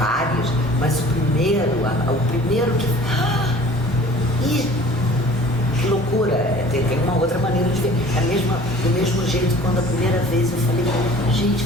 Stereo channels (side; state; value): both; normal; correlation 0.48